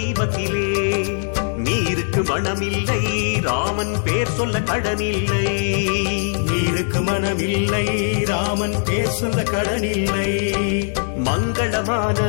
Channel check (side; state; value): right; silent; 65 dB below the other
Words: நீருக்கு மனமில்லை ராமன் பேர் சொல்ல கடனில்லை, நீருக்கு மனமில்லை ராமன் பேர் சொல்ல கடனில்லை. மங்களமான